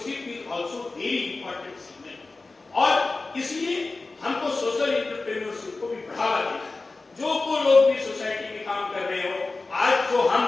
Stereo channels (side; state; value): right; quieter; 3.5 dB